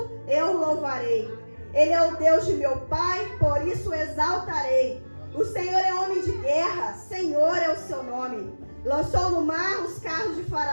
eu o louvarei. Ele é o Deus de meu pai, por isso o exaltarei. O Senhor é homem de guerra, Senhor é o seu nome. Lançou no mar os carros de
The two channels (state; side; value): inverted; both; correlation -1.00